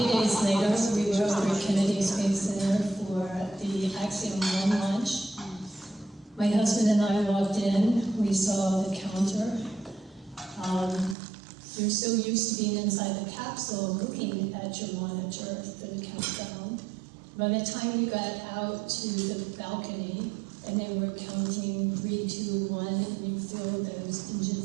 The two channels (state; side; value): drops out; left; at 11.2 s